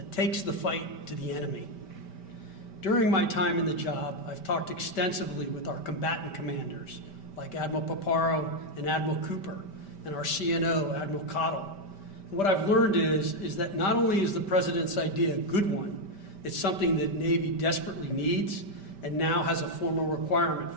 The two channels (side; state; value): right; late; 5.1 ms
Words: takes the fight to the enemy. During my time in the job, I've talked extensively with our combatant commanders, like Admiral Paparo and Admiral Cooper, and our CNO, Admiral Cottle. And what I've learned is that not only is the President's idea a good one, it's something that Navy desperately needs and now has a formal requirement